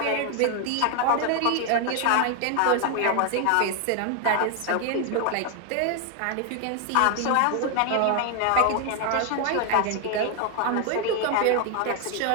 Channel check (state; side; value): different; both; correlation 0.00